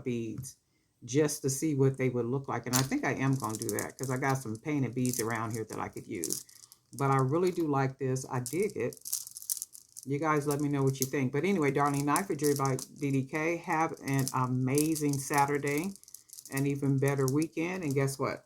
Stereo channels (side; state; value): both; identical; correlation 1.00